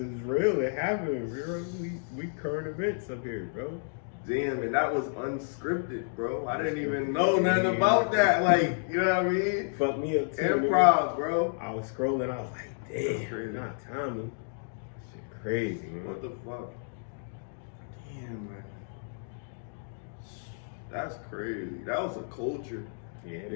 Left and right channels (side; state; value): right; silent; digital silence